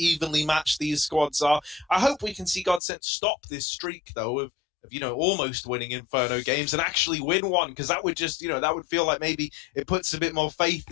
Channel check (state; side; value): drops out; right; at 2.8 s